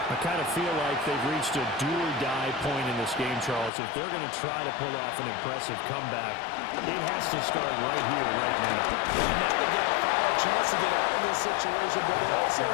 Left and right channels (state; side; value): drops out; right; at 3.7 s